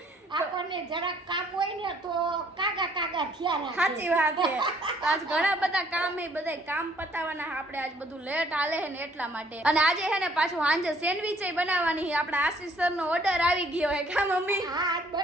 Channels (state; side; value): normal; both; correlation 0.62